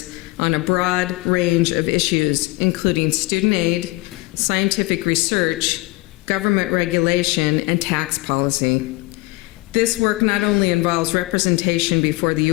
on a broad range of issues, including student aid, scientific research, government regulation, and tax policy. This work not only involves representation before the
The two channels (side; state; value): right; quieter; 22.2 dB